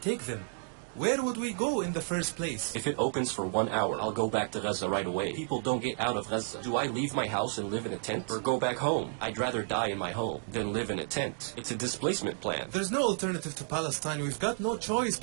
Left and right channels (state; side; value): silent; left; digital silence